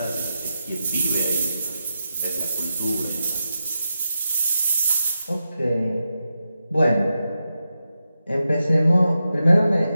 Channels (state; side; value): inverted; both; correlation -0.89